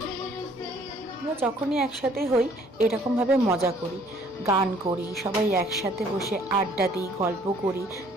আমরা যখনই একসাথে হই এরকমভাবে মজা করি, গান করি, সবাই একসাথে বসে আড্ডা দিই, গল্প করি।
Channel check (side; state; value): both; normal; correlation 0.59